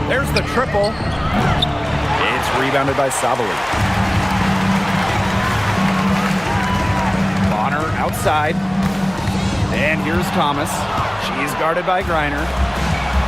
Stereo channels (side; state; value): left; noise; hum, 22 dB below the sound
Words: There's the triple. It's rebounded by Sabali. Bonner outside. And here's Thomas. She's guarded by Griner.